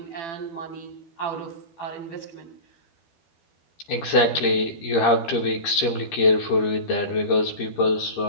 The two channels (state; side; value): late; right; 13 ms